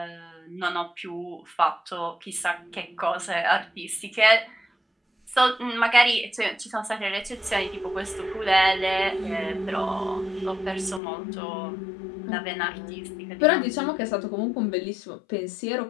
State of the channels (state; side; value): drops out; right; at 11.0 s